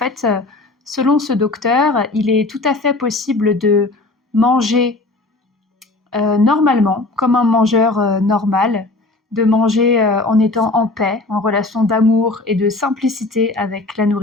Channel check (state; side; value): quieter; right; 3.1 dB